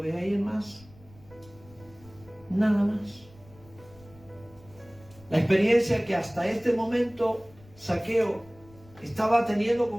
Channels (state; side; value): noise; left; rumble, 24 dB below the sound